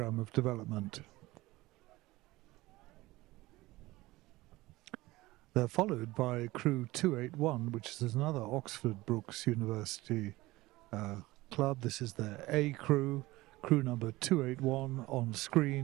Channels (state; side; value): quieter; left; 19.2 dB